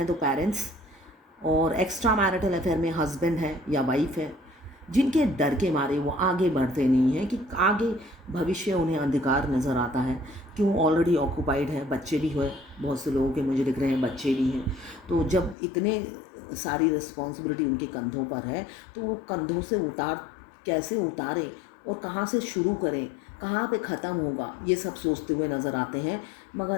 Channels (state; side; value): drops out; right; at 15.6 s